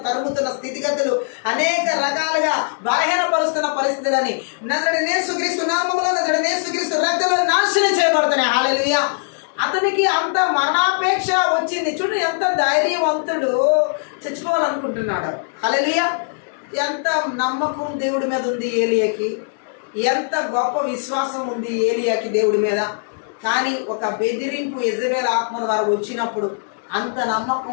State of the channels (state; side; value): silent; right; digital silence